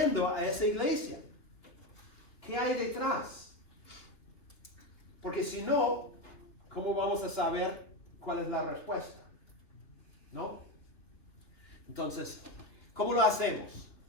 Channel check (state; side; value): late; right; 2.8 ms